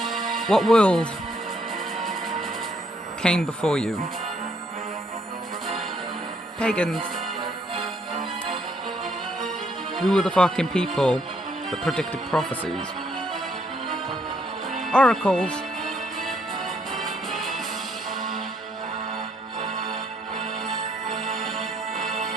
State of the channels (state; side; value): normal; both; correlation 0.70